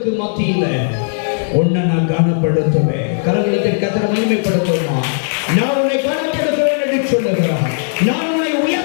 மத்தியில உன்னை நான் கனப்படுத்துவேன். கரங்களுக்கு கர்த்தரை மகிமைப்படுத்துமா? நான் உன்னை கனப்படுத்துவேன் என்று சொல்லுகிறார். நான் உன்னை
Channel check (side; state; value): right; silent; digital silence